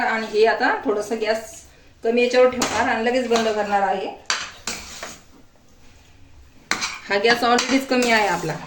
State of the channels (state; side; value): identical; both; correlation 1.00